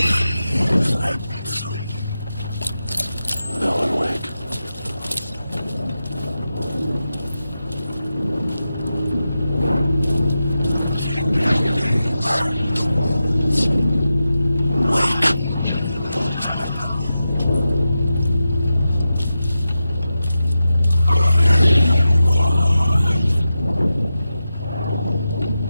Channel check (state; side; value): inverted; both; correlation -0.91